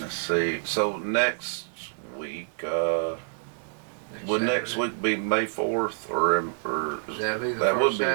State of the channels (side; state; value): left; silent; 60 dB below the other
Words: see. So next week, would next week be May 4th or That'll be the that would first be it.